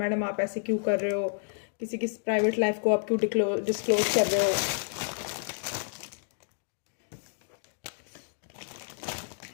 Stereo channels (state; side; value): silent; right; digital silence